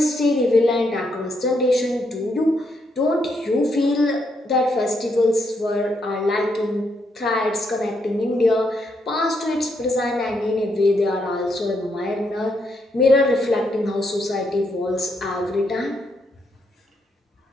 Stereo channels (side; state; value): both; normal; correlation 0.77